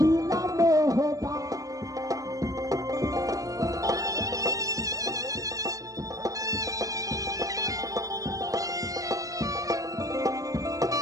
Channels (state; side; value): late; left; 0.16 ms